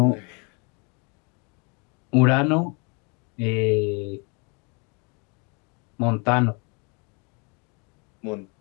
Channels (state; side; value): quieter; right; 32.8 dB